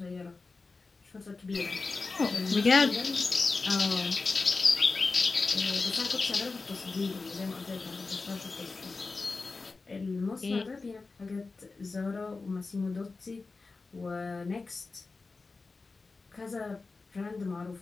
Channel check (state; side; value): quieter; right; 3.9 dB